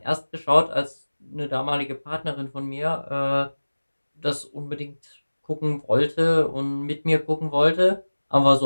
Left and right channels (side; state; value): both; inverted; correlation -1.00